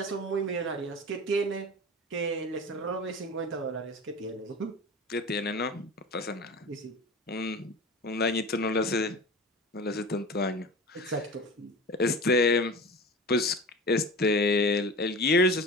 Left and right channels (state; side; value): normal; both; correlation 0.33